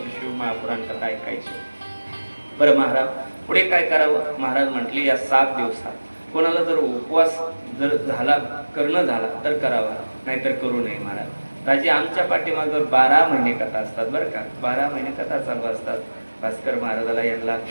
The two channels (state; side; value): inverted; both; correlation -1.00